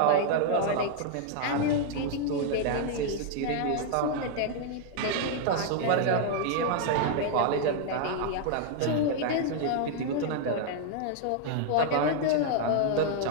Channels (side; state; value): both; different; correlation -0.01